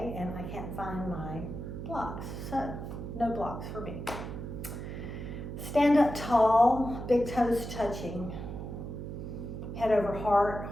and I can't find my blocks, so no blocks for me. Stand up tall, big toes touching. Head over heart,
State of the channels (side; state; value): right; noise; hum, 7 dB below the sound